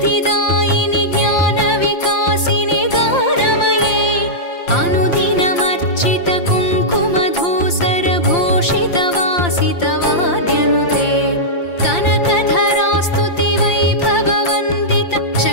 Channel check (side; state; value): right; late; 5.7 ms